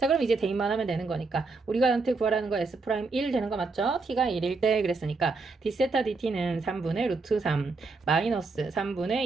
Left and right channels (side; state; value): left; quieter; 3.9 dB